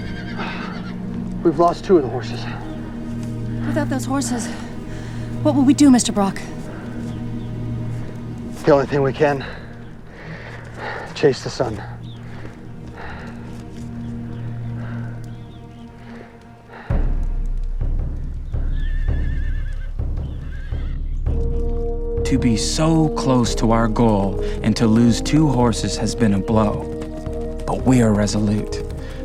We've lost 2 of the horses. Without those horses, what will we do, Mr. Brock? The only thing we can, chase the sun. To be so close to our goal and to lose 2 horses has been a blow. But we are resolute.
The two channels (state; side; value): identical; both; correlation 1.00